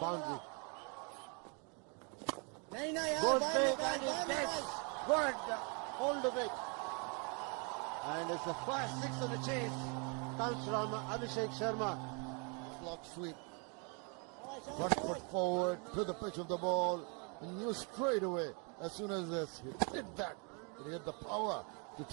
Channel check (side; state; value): left; quieter; 35.4 dB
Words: Good big, and it gets good hold of it. And it's the first 6 of the chase. Comes from Abhishek Sharma. Block sweep. Front foot forward to the pitch of the ball. And knew straight away, as soon as this hit that, he had the power to